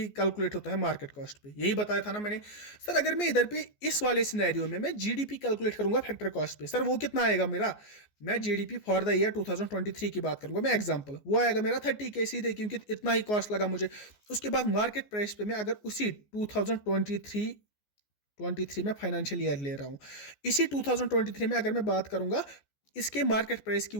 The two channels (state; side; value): late; right; 14 ms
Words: कैलकुलेट होता है मार्केट कॉस्ट पे, यही बताया था ना मैंने। सर अगर मैं इधर पे इस वाले सिनेरियो में मैं जीडीपी कैलकुलेट करूंगा फैक्टर कॉस्ट पे, सर वो कितना आएगा मेरा? मैं जीडीपी फॉर द ईयर 2023 की बात करूंगा मैं, एग्जांपल, वो आएगा मेरा 30K सीधे, क्योंकि इतना ही कॉस्ट लगा मुझे। उसके बाद मार्केट प्राइस पे मैं अगर उसी 2023 में फाइनेंशियल ईयर ले रहा हूं, इसी 2023 में अगर मैं बात करूंगा, इसके मार्केट प्राइस की